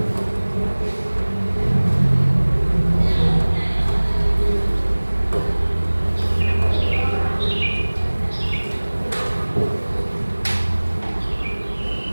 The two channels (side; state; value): both; inverted; correlation -1.00